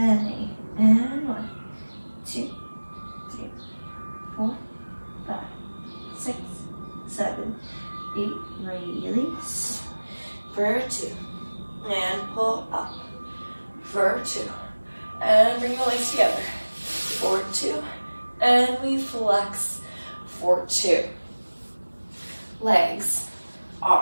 8, and 1, 2, 3, 4, 5, 6, 7, 8, release. For 2, and pull up. For 2, and bring your legs together. For 2, and we flex. For 2. Legs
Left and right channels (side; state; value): both; inverted; correlation -1.00